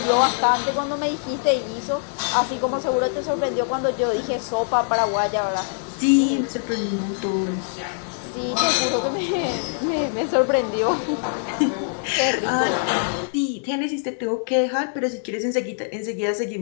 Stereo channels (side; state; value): right; silent; 63 dB below the other